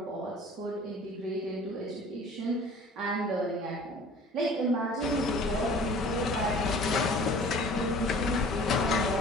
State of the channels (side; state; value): both; normal; correlation 0.47